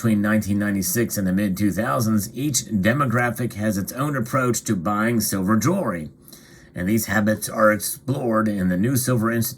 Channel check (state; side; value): identical; both; correlation 1.00